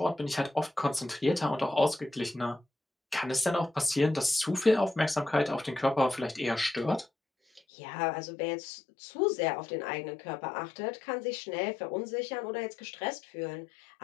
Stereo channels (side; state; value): right; drops out; at 7.6 s